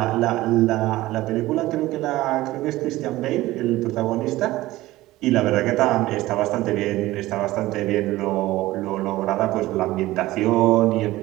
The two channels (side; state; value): left; quieter; 17.3 dB